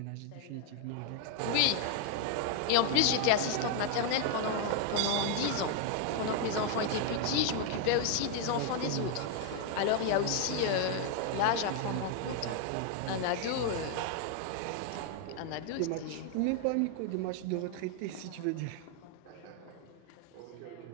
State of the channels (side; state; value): both; different; correlation 0.00